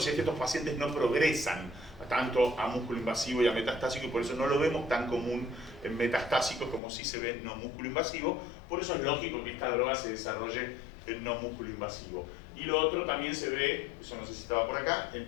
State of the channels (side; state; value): right; drops out; at 6.8 s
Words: si es que estos pacientes no progresan tanto a músculo invasivo y a metastásico, y por eso no lo vemos tan común en metastásicos como sí se ve en no músculo invasivo. Por eso es lógico que esta droga se desarrolle en no músculo invasivo. Y lo otro también se ve, eso no sé si estaba por acá, en